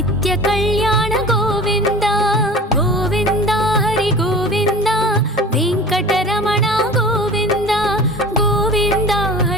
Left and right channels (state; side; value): normal; both; correlation 0.39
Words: కళ్యాణ గోవింద గోవింద హరి గోవింద వెంకటరమణ గోవింద గోవింద